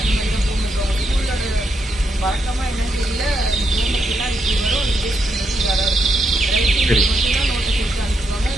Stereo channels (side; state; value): both; normal; correlation 0.80